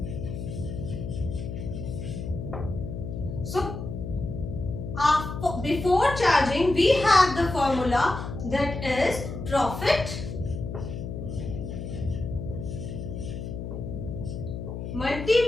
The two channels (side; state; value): left; noise; hum, 7 dB below the sound